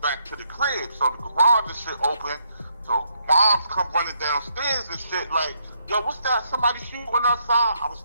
back to the crib. So the garage and shit open. So moms come running downstairs and shit like, yo, what's that? Somebody shooting outside? I was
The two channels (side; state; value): both; inverted; correlation -0.74